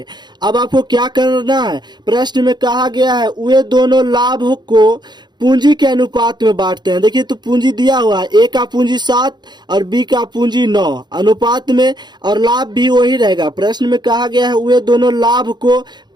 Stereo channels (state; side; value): late; left; 0.21 ms